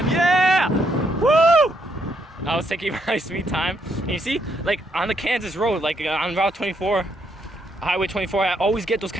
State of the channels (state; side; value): normal; both; correlation 0.75